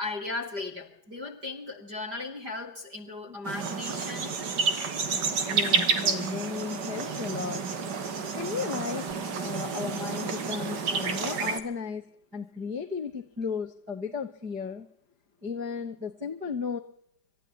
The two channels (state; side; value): late; left; 5.0 ms